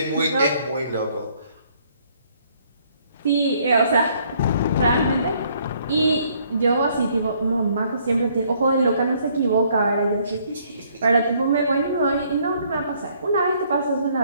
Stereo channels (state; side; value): inverted; both; correlation -0.65